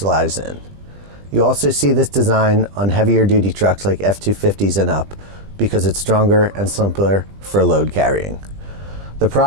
in. You also see this design on heavier duty trucks like F-250s and up because it's stronger and simpler for load carrying. The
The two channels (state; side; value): late; left; 20 ms